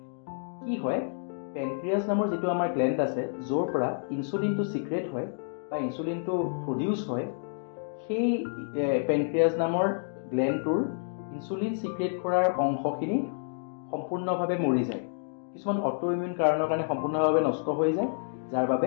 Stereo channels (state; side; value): silent; right; digital silence